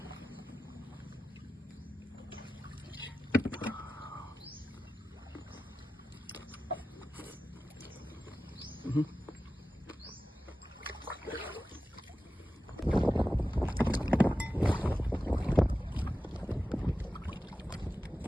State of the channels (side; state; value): both; normal; correlation 0.94